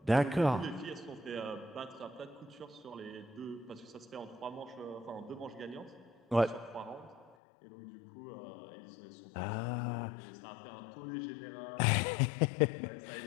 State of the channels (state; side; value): drops out; right; at 7.4 s